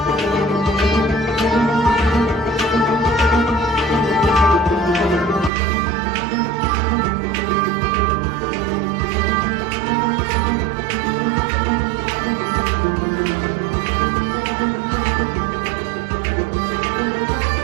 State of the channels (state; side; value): drops out; left; at 5.5 s